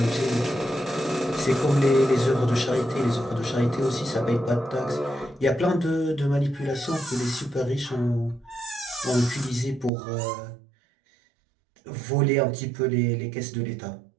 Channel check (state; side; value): drops out; left; at 9.9 s